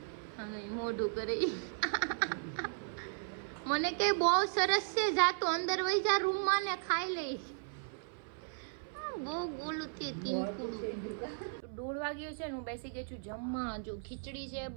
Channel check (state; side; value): silent; left; 54 dB below the other